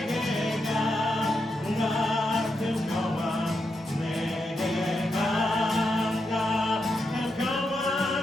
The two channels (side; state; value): both; normal; correlation 0.84